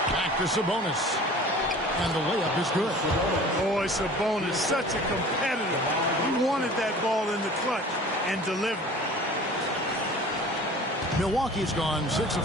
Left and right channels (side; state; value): both; normal; correlation 0.44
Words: Back to Sabonis. And the layup is good. Boy, Sabonis, such a competitor. He wanted that ball in the clutch and delivered. Milwaukee's gone 6